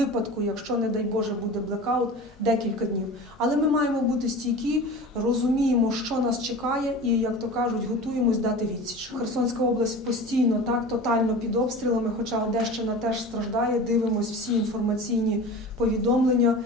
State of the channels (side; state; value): both; normal; correlation 0.35